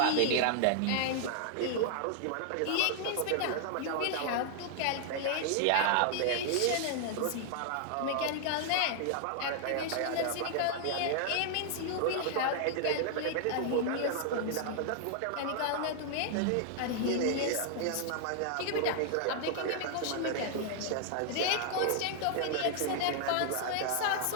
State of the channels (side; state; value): both; different; correlation 0.00